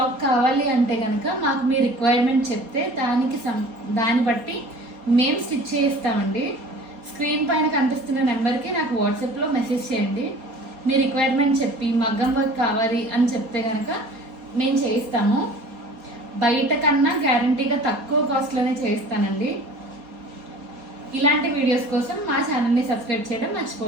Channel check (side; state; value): left; late; 4.2 ms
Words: కావాలి అంటే కనుక మాకు మీ రిక్వైర్మెంట్ చెప్తే దాన్ని బట్టి మేము స్టిచ్ చేయిస్తామండి. స్క్రీన్ పైన కనిపిస్తున్న నెంబర్కి నాకు వాట్సాప్లో మెసేజ్ చేయండి. మీ రిక్వైర్మెంట్ చెప్పి మగ్గం వర్క్ కావాలి అని చెప్తే కనుక మేము చేయిస్తాము. బయట కన్నా గ్యారంటీగా తక్కువ కాస్ట్లోనే చేయిస్తానండి. ఇలాంటి వీడియోస్ కోసం మా ఛానల్ని సబ్స్క్రైబ్ చేయడం